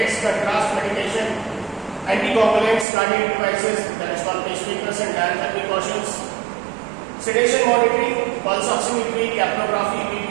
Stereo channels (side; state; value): left; drops out; at 2.9 s